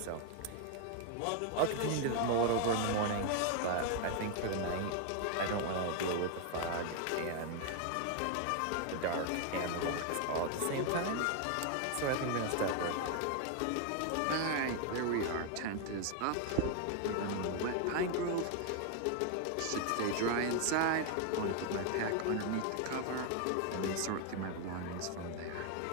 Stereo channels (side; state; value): both; different; correlation 0.01